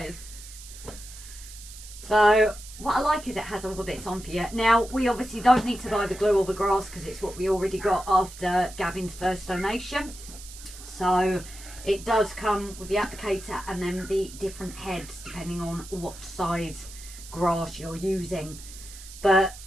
So what I like is it has all the bits on for you. Now, we obviously don't need to buy the glue or the grass because it's what we already got after Gavin's first donation. So it does come with the applicator and then the different heads depending on what size grass you're using. But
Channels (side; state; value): right; noise; hiss, 15 dB below the sound